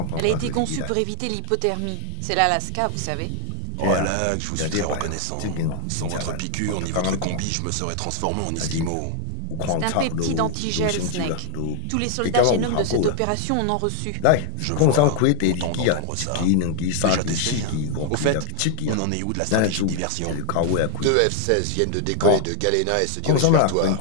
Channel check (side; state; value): both; different; correlation 0.00